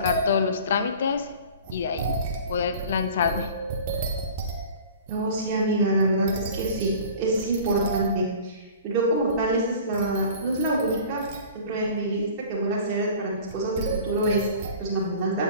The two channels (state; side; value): inverted; both; correlation -0.43